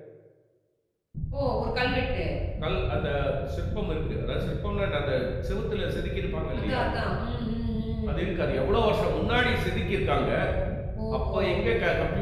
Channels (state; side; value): identical; both; correlation 1.00